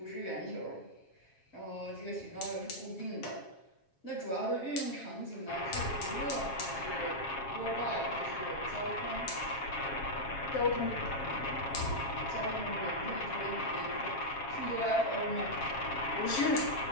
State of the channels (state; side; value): late; right; 7.3 ms